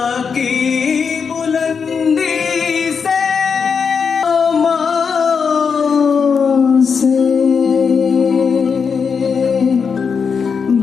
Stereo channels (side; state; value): right; quieter; 6.0 dB